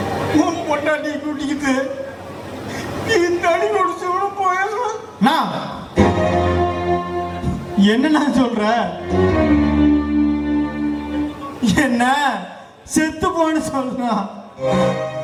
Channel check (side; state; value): both; identical; correlation 1.00